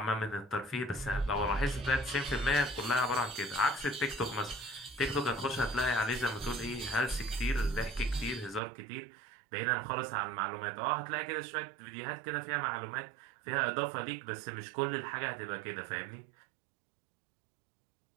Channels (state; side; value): drops out; left; at 8.6 s